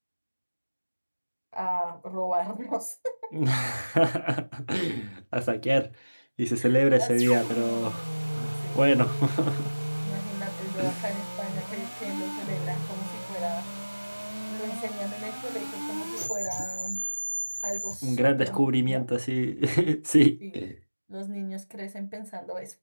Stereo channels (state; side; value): inverted; both; correlation -1.00